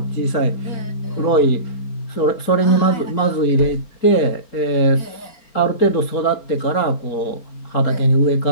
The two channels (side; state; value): right; late; 4.3 ms